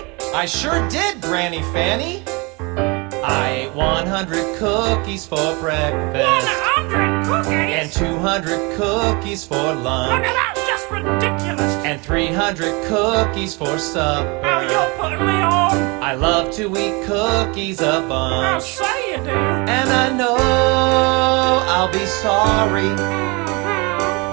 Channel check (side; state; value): left; quieter; 28.2 dB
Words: I sure did, Granny Fanny. I ate 100 cookies for breakfast. 100 cookies? And 200 cookies for lunch. Look, that's just ridiculous. And 300 cookies for supper. Oh, you're putting me on. I love to eat cookies a I'll bunch. say you do. And I know I'll be sorry